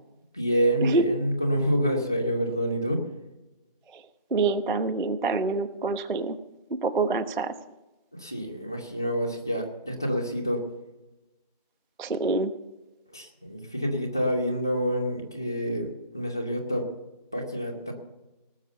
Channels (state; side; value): inverted; both; correlation -0.45